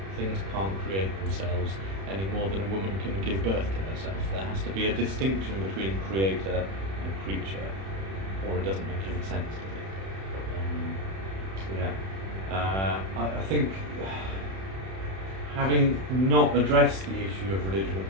Things can't create themselves any more than a woman can give birth to herself. There has to be a distinction between creator and creature, or it doesn't make any sense, does it? I think, having not addressed the issue of religion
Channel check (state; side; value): late; left; 31 ms